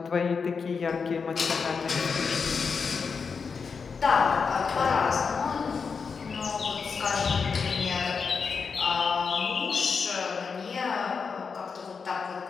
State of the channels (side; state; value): right; quieter; 5.5 dB